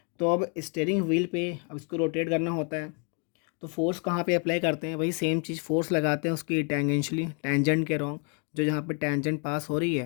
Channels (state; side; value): quieter; right; 38.5 dB